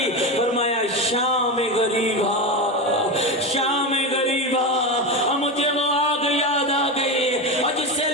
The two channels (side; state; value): both; normal; correlation 0.18